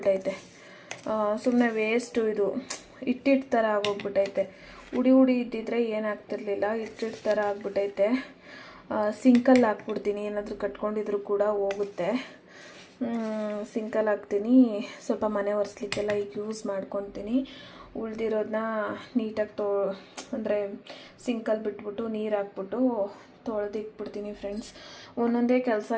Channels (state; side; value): identical; both; correlation 1.00